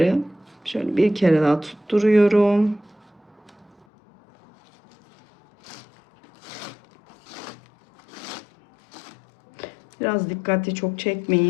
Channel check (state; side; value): drops out; right; at 3.9 s